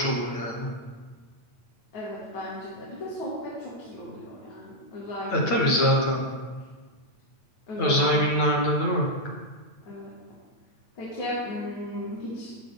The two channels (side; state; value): right; late; 8.9 ms